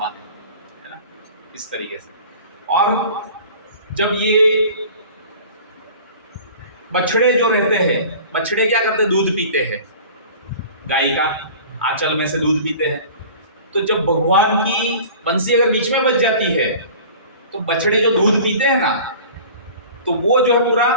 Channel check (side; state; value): both; inverted; correlation -0.43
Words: है ना, इस तरीके से। और जब ये बछड़े जो रहते हैं, बछड़े क्या करते हैं? दूध पीते हैं, गाय का आंचल में से दूध पीते हैं। तो जब भगवान की बंसी अगर बीच में बज जाती है तो बछड़े जो दूध पीते हैं ना, तो वो जो है पूरा